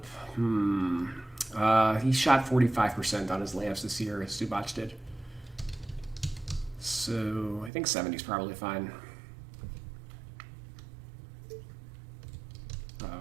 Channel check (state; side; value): drops out; left; at 7.7 s